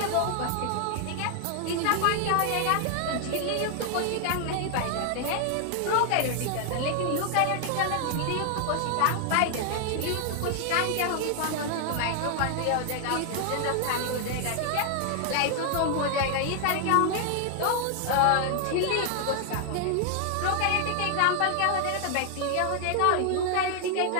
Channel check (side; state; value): both; different; correlation 0.00